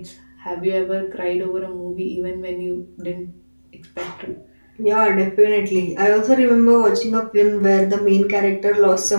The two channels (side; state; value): both; inverted; correlation -1.00